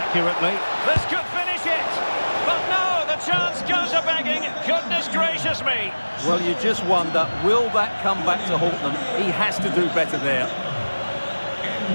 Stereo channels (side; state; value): both; inverted; correlation -1.00